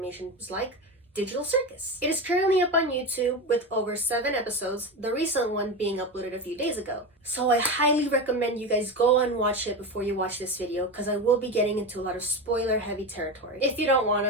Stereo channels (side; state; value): both; normal; correlation 0.21